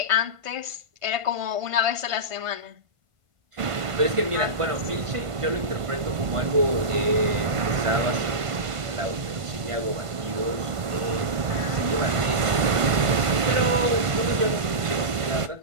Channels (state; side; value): late; left; 1.5 ms